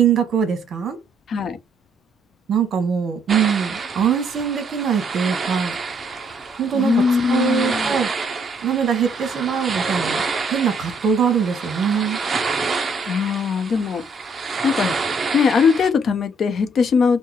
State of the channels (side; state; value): both; normal; correlation 0.67